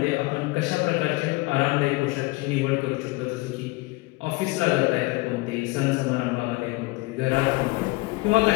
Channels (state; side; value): quieter; right; 22.9 dB